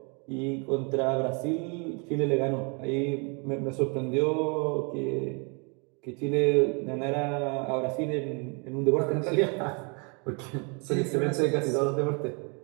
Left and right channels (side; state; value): left; quieter; 34.1 dB